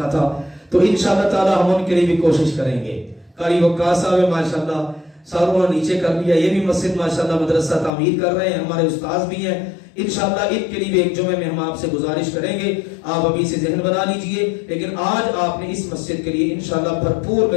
تھا، تو انشاءاللہ تعالی ہم ان کے لیے بھی کوشش کریں گے. قاری وقاص صاحب ماشاءاللہ ساروں نے نیچے کر لیا، یہ بھی مسجد ماشاءاللہ مدرسہ تعمیر کر رہے ہیں، ہمارے استاذ بھی ہیں. انشاءاللہ ان کے لیے بھی ایک جمعے میں ہم آپ سے گزارش کریں گے، آپ ابھی سے ذہن بنا لیجئے. لیکن آج آپ نے اس مسجد کے لیے انشاءاللہ بھرپور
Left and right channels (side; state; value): right; drops out; at 7.9 s